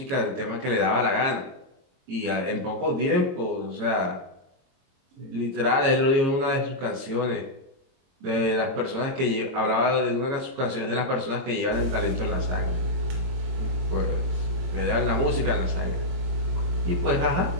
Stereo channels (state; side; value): late; left; 22 ms